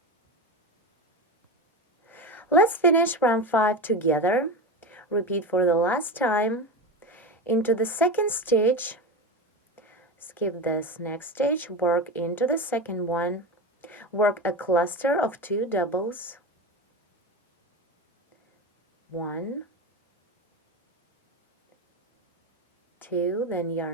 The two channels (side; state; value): both; normal; correlation 0.21